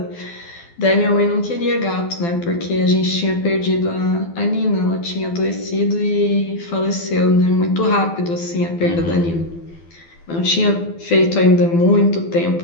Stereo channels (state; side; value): late; right; 12 ms